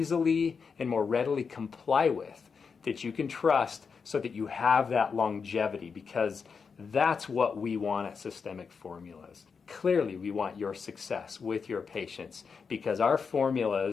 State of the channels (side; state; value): right; quieter; 5.6 dB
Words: and more readily comply with, that you can trust so that you have that longevity, because that's what we want at Systemic Formulas. Clearly, we want your success with your patients because our